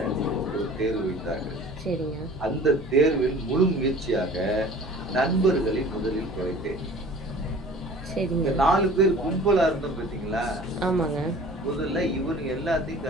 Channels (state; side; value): normal; both; correlation 0.45